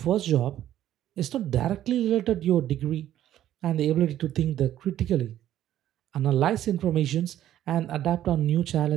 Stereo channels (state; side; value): quieter; left; 12.2 dB